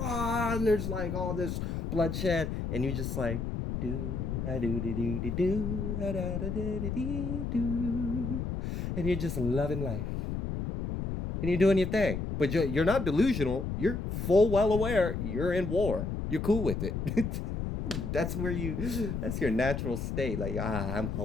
and there's like all this bloodshed, and you just like do a do do do do do da da da da do, and you're just loving life, and you're doing your thing. But you're not delusional. You're full well aware you're in war. You're cool with it. That's where that's your natural state. Like, I'm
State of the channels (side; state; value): left; noise; rumble, 3 dB below the sound